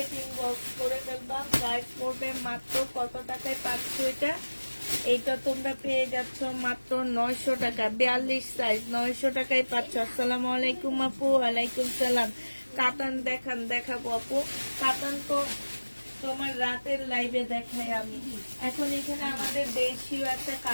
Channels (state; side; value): inverted; both; correlation -1.00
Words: ইনবক্স করে ফেলবা। প্রাইস পড়বে মাত্র কত টাকায় পাচ্ছ এটা? এইটা তোমরা পেয়ে যাচ্ছ মাত্র 900 টাকা। 42 সাইজ 900 টাকায় পাচ্ছ। আসসালামু আলাইকুম আপু। ওয়ালাইকুম সালাম। কাতান দেখাবো আপু। কাতান তো তোমার রাতের লাইভে দেখাই আমি। এখন এখানে আমাদের দেশীয় একটা